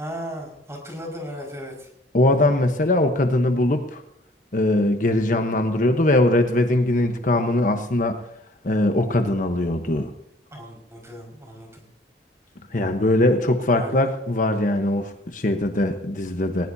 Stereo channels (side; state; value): both; normal; correlation 0.55